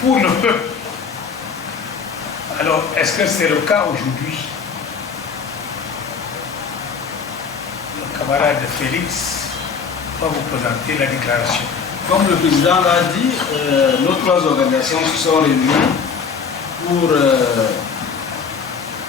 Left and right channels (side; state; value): right; quieter; 5.9 dB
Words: pour le peuple. Alors, est-ce que c'est le cas aujourd'hui? Le camarade Félix va vous présenter la déclaration. Comme le président l'a dit, nos 3 organisations se sont réunies pour